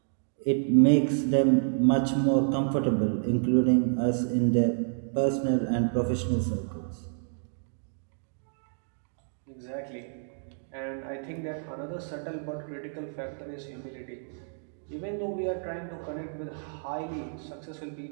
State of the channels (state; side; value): silent; left; digital silence